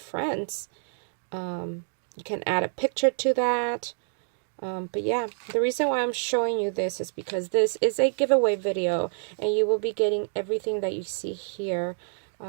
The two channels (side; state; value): left; silent; digital silence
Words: You can add a picture to that. But yeah, the reason why I'm showing you this is because this is a giveaway video, and you will be getting everything that you see here.